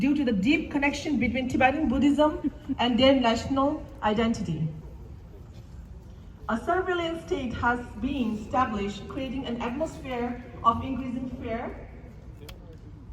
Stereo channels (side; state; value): both; identical; correlation 1.00